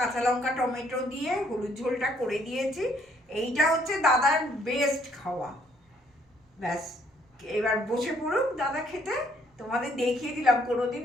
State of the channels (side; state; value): both; normal; correlation 0.66